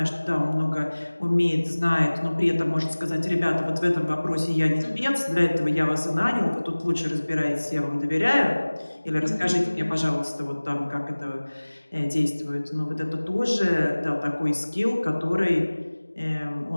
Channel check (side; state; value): both; inverted; correlation -1.00